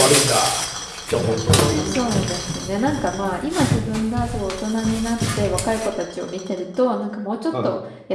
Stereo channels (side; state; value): both; identical; correlation 1.00